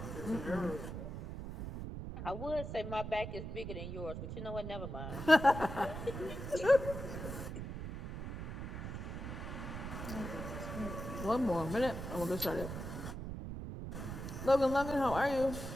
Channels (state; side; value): noise; right; rumble, 7 dB below the sound